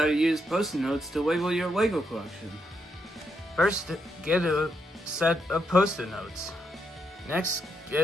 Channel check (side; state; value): both; normal; correlation 0.79